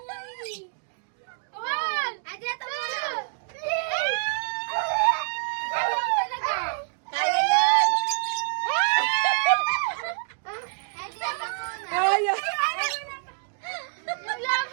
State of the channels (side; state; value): left; silent; digital silence